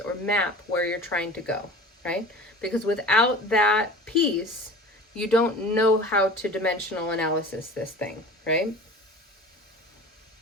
map where you're trying to go, right? Because without that piece, you don't know how to dimensional analysis this thing, right?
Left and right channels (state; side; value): normal; both; correlation 0.39